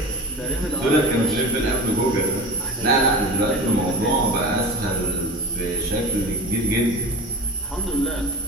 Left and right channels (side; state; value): both; normal; correlation 0.31